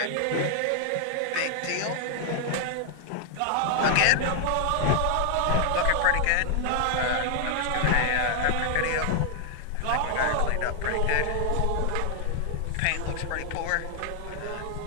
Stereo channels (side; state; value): both; different; correlation 0.00